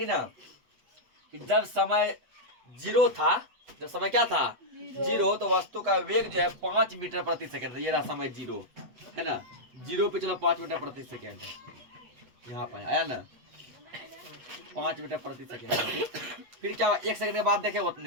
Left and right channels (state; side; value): late; left; 8.2 ms